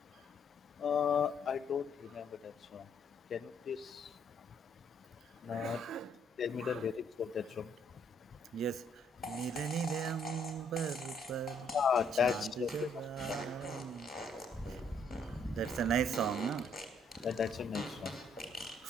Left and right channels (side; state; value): both; normal; correlation 0.68